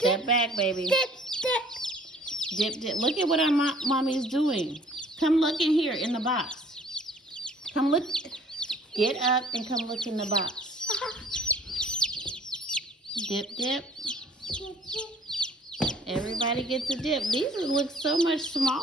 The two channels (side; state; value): both; normal; correlation 0.55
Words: back, baby. Dip. Dip, dip. Look at what our mommy's doing. Come look in here in the box. Come look. Get up and come look in the box. Dip, dip. Everybody gets a dip. These look so much